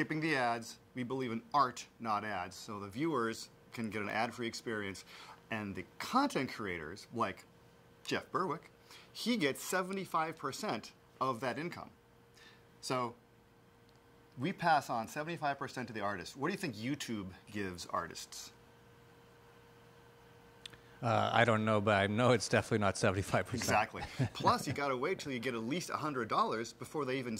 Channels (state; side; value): identical; both; correlation 1.00